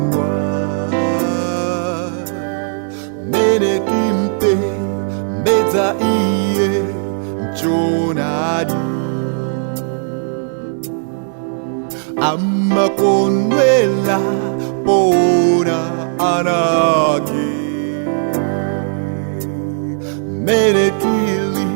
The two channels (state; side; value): silent; left; digital silence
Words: mene timpe mbedza iye mchonadi amakondwela pona anake mene tili